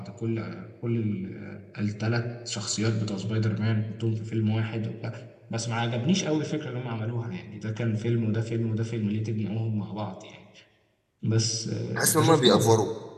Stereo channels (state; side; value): identical; both; correlation 1.00